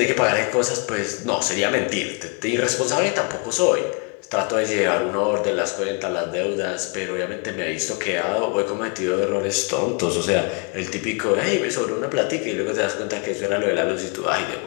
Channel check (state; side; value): quieter; right; 35.4 dB